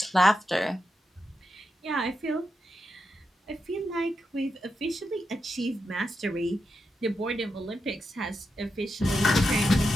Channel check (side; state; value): both; normal; correlation 0.87